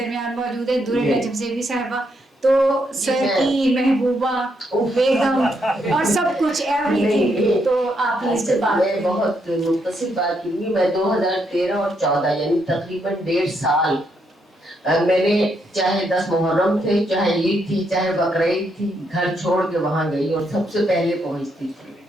موجود ہے, درے نجم زیبی صاحبہ. تو سر کی محبوبہ بیگم اور سب کچھ ایوری تھنگ. تو آپ اس سے بات, میں بہت مختصر بات کروں گی. میں 2013 اور 14 یعنی تقریباً 1.5 سال میں نے, چاہے 10 محرم تھے, چاہے عید تھی, چاہے بقرعید تھی, گھر چھوڑ کے وہاں گئی اور سب سے پہلے پہنچتی تھی.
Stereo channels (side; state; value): both; normal; correlation 0.77